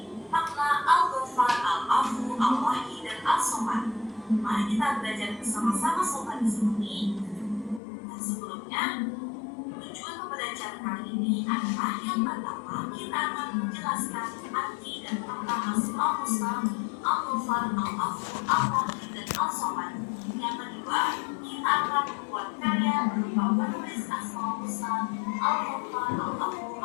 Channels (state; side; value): drops out; right; at 7.8 s